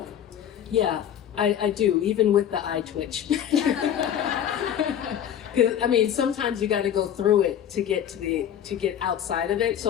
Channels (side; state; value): right; quieter; 9.8 dB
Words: Yeah, I do, even with the eye twitch. I mean, sometimes you got to go through it to get outside of it.